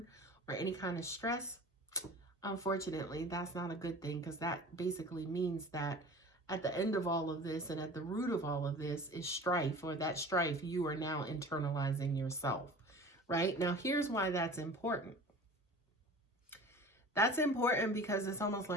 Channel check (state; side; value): normal; both; correlation 0.40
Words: or any kind of stress, unfortunately, that's not a good thing because that basically means that at the end of all of this and at the root of all of this is strife, or that strife you are now internalizing yourself, right? Now, here's why that's important. That's important because it's almost